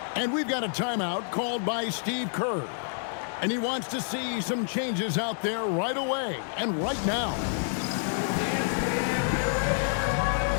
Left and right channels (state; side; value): silent; right; digital silence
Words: And we've got a timeout called by Steve Kerr. And he wants to see some changes out there right away and right now.